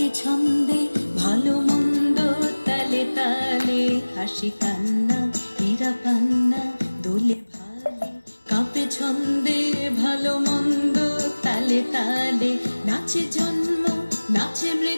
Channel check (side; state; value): both; inverted; correlation -1.00